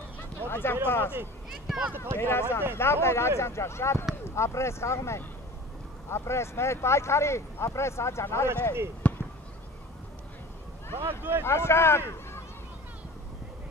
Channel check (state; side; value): normal; both; correlation 0.40